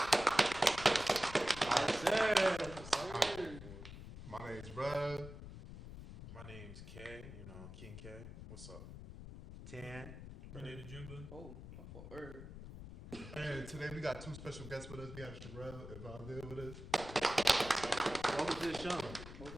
My name's Brad. My name's K, King K. What's up? Tan. Renee the Jimba. Oh, I'm for Herb. And today we got two special guests with us. We have Cherrell and Valdez with us. Welcome to the show.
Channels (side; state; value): left; noise; rumble, 12 dB below the sound